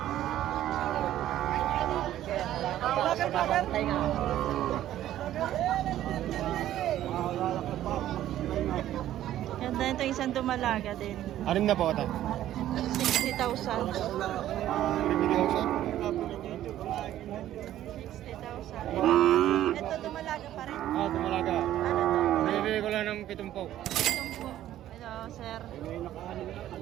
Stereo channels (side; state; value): left; quieter; 12.7 dB